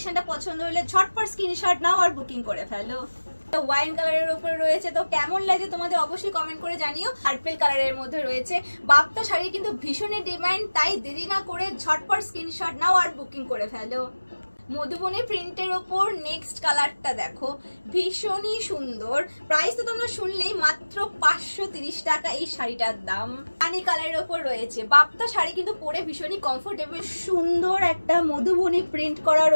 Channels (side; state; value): both; inverted; correlation -1.00